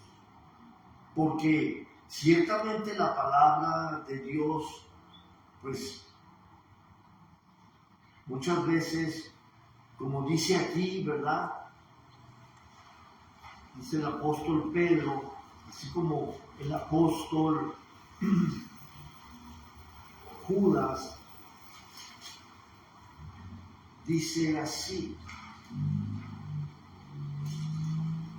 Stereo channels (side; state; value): both; identical; correlation 1.00